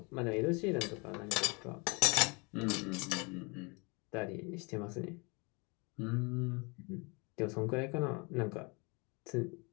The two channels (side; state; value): right; quieter; 29.8 dB